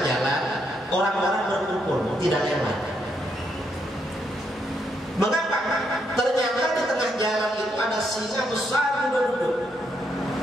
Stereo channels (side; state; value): both; normal; correlation 0.77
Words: jalan orang-orang berkumpul tidak lewat. Mengapa? Ternyata di tengah jalan itu ada singa besar duduk-duduk